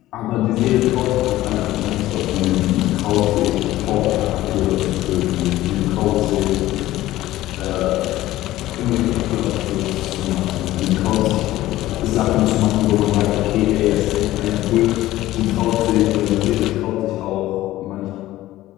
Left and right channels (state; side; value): quieter; right; 15.7 dB